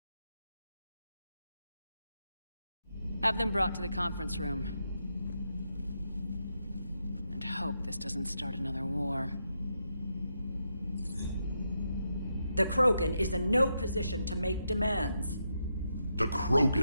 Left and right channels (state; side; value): inverted; both; correlation -0.83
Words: Have them brought to the conference room. And hope this doesn't start another war. The Krogan is in no position to make demands. The